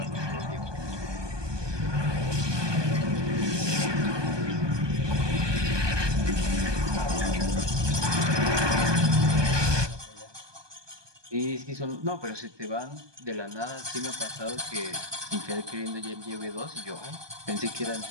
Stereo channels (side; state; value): left; late; 1.2 ms